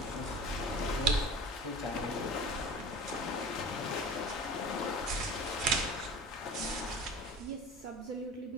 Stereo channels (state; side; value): normal; both; correlation 0.39